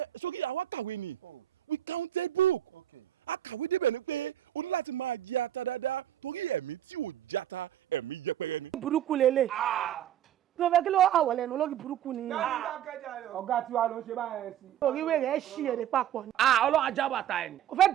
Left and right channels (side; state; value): left; quieter; 11.3 dB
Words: sókè àwa kàwé ni we counted book akàwé débẹ̀ ni pé o ní láti máa jẹ ata dáadáa torí ẹ̀mí tí ò jata ẹ̀mí yẹpẹrẹ ni. burúkú lélẹ̀ kí ló fẹ́ kí ló àwọ̀ lẹ́nu lórí burúkú ni. ọ̀gá tiwa ló ń ṣe báyẹn sí. oríwé rẹ̀ ṣí èrè papọ̀ ni. ọlọ́run ajá bàtà ẹ̀ ni. kò fẹ́